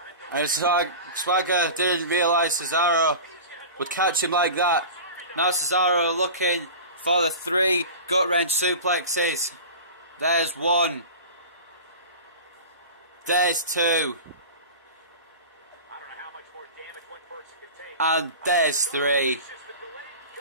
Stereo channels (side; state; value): both; inverted; correlation -0.34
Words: And Swagger didn't realise Cesaro would catch him like that. Now Cesaro looking for the 3 gut wrench suplexes. There's 1. There's 2. And there's 3.